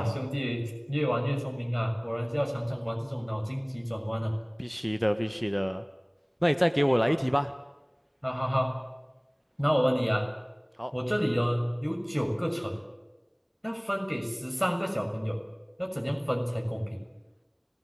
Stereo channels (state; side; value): identical; both; correlation 1.00